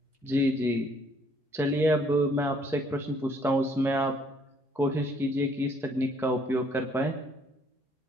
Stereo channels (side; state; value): both; normal; correlation 0.64